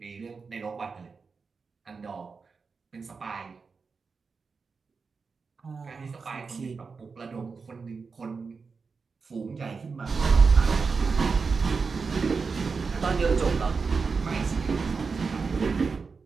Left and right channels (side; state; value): left; quieter; 4.9 dB